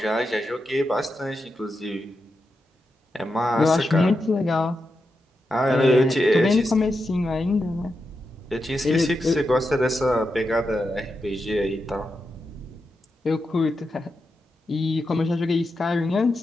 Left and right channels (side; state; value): both; normal; correlation 0.87